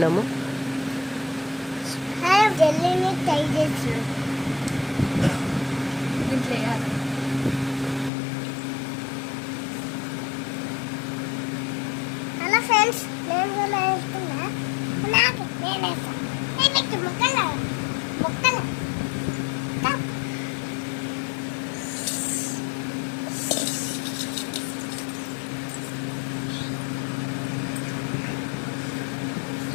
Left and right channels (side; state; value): right; drops out; at 8.1 s